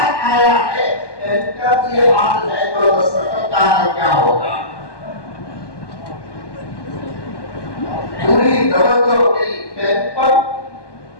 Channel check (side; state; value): right; late; 1.2 ms